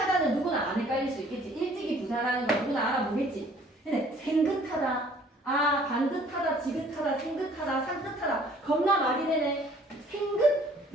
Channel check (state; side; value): normal; both; correlation 0.56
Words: 누구나 안 헷갈릴 수 있겠지. 일찍이 부사라는 거 누구나 알아보겠지. 근데 생긋하다. 반듯하다, 지긋하다, 생긋하다, 산뜻하다. 겁나 말이 되네. 생긋